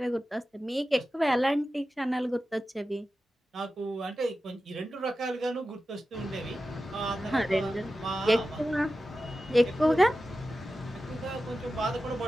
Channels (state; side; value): normal; both; correlation 0.93